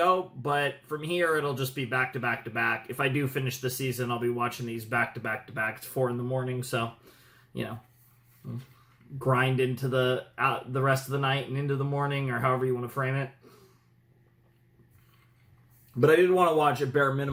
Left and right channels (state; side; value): identical; both; correlation 1.00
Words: but from here it'll just be back to back to back. If I do finish the season, I'll be watching these back to back to back. It's 4 in the morning, so grind into the rest of the night and into the morning, or however you want to frame it. But I did want to watch at bare